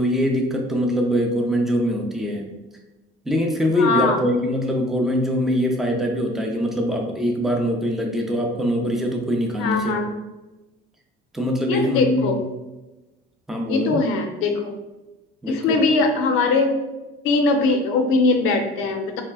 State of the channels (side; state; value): both; normal; correlation 0.47